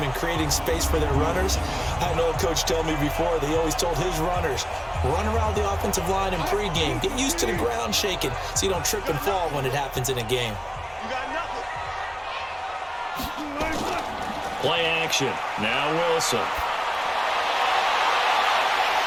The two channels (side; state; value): both; identical; correlation 1.00